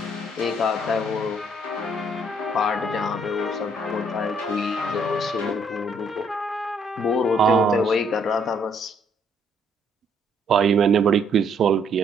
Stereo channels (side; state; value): both; normal; correlation 0.67